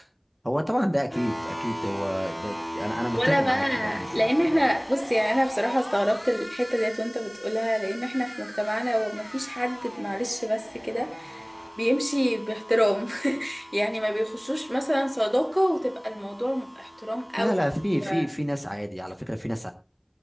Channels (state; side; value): identical; both; correlation 1.00